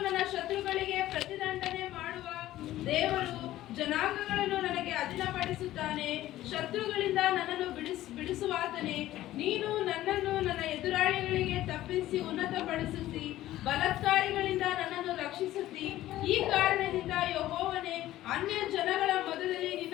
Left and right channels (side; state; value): right; quieter; 14.7 dB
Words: ನನ್ನ ಶತ್ರುಗಳಿಗೆ ಪ್ರತಿದಂಡನೆ ಮಾಡುವ ದೇವರು. ಜನಾಂಗಗಳನ್ನು ನನಗೆ ಅಧೀನಪಡಿಸುತ್ತಾನೆ. ಶತ್ರುಗಳಿಂದ ನನ್ನನ್ನು ಬಿಡಿಸುವಾತನೇ. ನೀನು ನನ್ನನ್ನು ನನ್ನ ಎದುರಾಳಿಗಳಿಗೆ ತಪ್ಪಿಸಿ ಉನ್ನತಪಡಿಸುತ್ತಿ. ಬಲಾತ್ಕಾರಿಗಳಿಂದ ನನ್ನನ್ನು ರಕ್ಷಿಸುತ್ತಿ. ಈ ಕಾರಣದಿಂದ ಯೆಹೋವನೇ, ಅನ್ಯ ಜನಗಳ ಮೊದಲಲ್ಲಿ